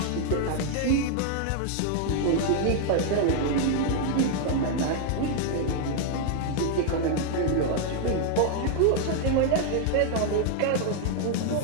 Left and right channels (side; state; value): both; different; correlation 0.00